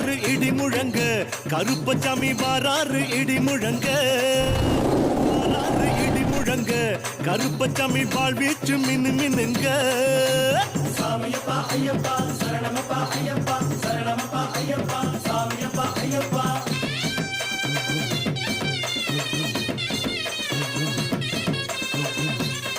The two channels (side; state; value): both; identical; correlation 1.00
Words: இடி முழங்க கருப்பசாமி வாராறு இடி முழங்க வாராறு இடி முழங்க கருப்பசாமி வாழ்வீச்சு மின்னு மின்னுங்க சாமியப்பா ஐயப்பா சரணமப்பா ஐயப்பா சரணமப்பா ஐயப்பா சாமியப்பா ஐயப்பா